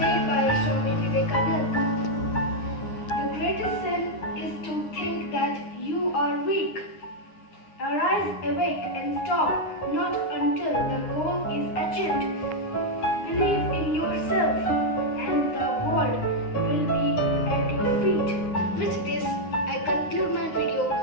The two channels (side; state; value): right; late; 9.7 ms